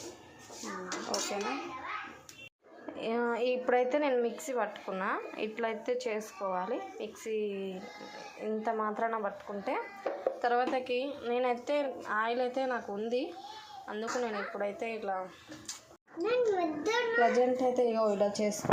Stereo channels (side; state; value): both; identical; correlation 1.00